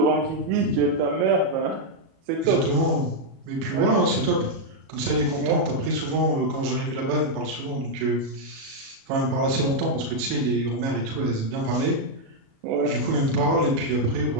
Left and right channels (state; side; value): late; left; 37 ms